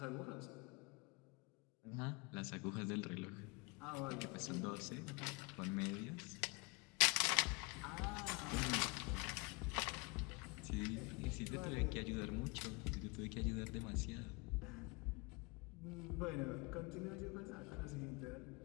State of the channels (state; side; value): quieter; right; 29.0 dB